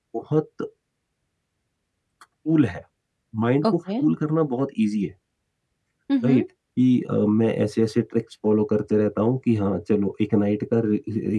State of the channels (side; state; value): both; identical; correlation 1.00